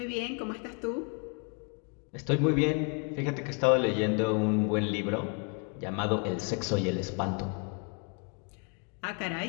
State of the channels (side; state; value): right; quieter; 35.9 dB